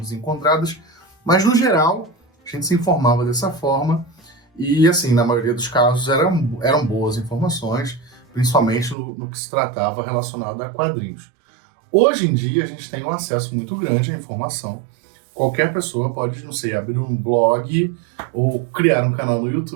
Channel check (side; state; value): left; drops out; at 9.0 s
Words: mas no geral a gente se informava dessa forma e, assim, na maioria dos casos eram boas informações, principalmente no que se tratava relacionado a quadrinhos. Hoje em dia a gente tem um acesso muito grande à informação. Qualquer pessoa pode, não sei, abrir um blog ou criar um canal no